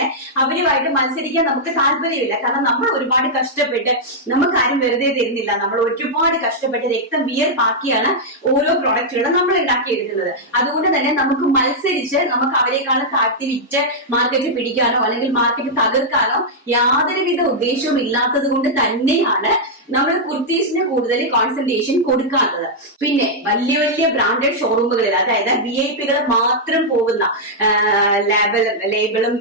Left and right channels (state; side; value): normal; both; correlation -0.06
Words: അവരുമായിട്ട് മത്സരിക്കാൻ നമുക്ക് താല്പര്യമില്ല. കാരണം നമ്മൾ ഒരുപാട് കഷ്ടപ്പെട്ട്, നമുക്ക് ആരും വെറുതെ തരുന്നില്ല. നമ്മൾ ഒരുപാട് കഷ്ടപ്പെട്ട് രക്തം വിയർപ്പാക്കിയാണ് ഓരോ പ്രൊഡക്റ്റുകളും നമ്മൾ ഉണ്ടാക്കിയെടുക്കുന്നത്. അതുകൊണ്ട് തന്നെ നമുക്ക് മത്സരിച്ച് നമുക്ക് അവരെക്കാളും താഴ്ത്തി വിറ്റ് മാർക്കറ്റ് പിടിക്കാനോ അല്ലെങ്കിൽ മാർക്കറ്റ് തകർക്കാനോ യാതൊരുവിധ ഉദ്ദേശവും ഇല്ലാത്തത് കൊണ്ട് തന്നെയാണ് നമ്മൾ കുർത്തീസിന് കൂടുതൽ കോൺസെൻട്രേഷൻ കൊടുക്കാത്തത്. പിന്നെ വലിയ ബ്രാൻഡഡ് ഷോറൂമുകളിൽ, അതായത് VIP-കൾ മാത്രം പോകുന്ന ലേബിളും